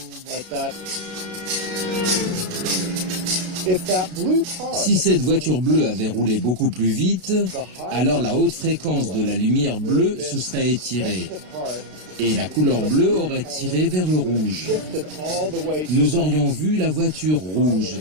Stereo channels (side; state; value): left; late; 32 ms